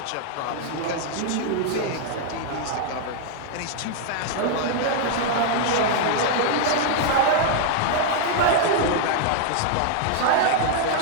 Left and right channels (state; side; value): different; both; correlation 0.00